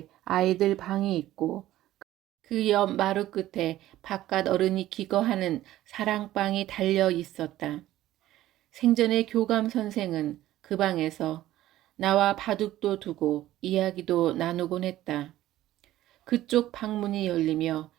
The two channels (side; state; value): left; quieter; 14.5 dB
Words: 아이들 방이 있고 그 옆 마루 끝에 바깥 어른이 기거하는 사랑방이 달려 있었다. 생전에 교감 선생은 그 방에서 나와 바둑도 두고 이야기도 나누곤 했다. 그쪽 방문이 열리며